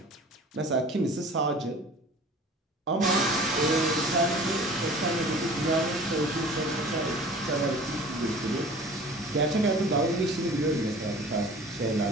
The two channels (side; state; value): both; normal; correlation 0.43